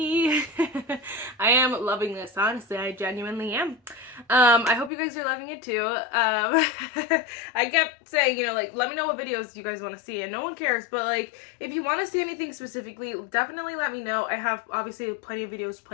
I am loving this, honestly. I genuinely am. I hope you guys are loving it too. I kept saying, let me know what videos you guys want to see, and no one cares, but if you want to see anything specifically, definitely let me know. I have obviously plenty of videos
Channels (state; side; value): drops out; right; at 4.9 s